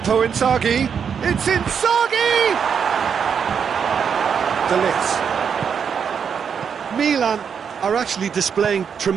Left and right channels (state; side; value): quieter; left; 7.0 dB